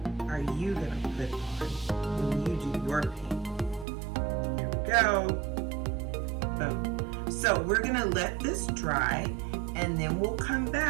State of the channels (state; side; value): drops out; left; at 3.9 s